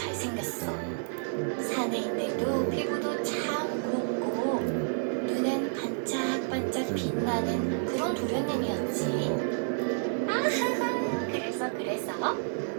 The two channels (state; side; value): silent; left; digital silence